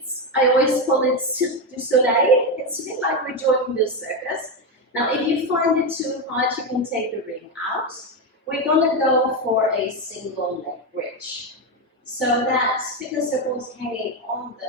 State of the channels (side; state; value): both; normal; correlation 0.11